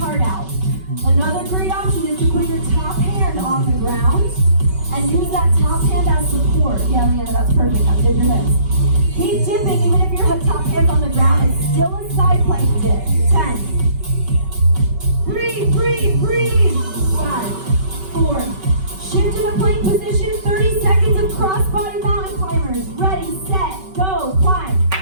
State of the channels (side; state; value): left; late; 5.3 ms